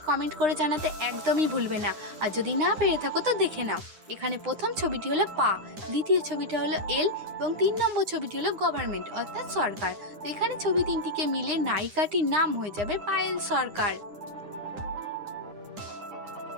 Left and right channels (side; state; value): left; late; 9.8 ms